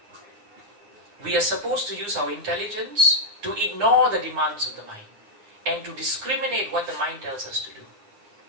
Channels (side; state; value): left; late; 9.7 ms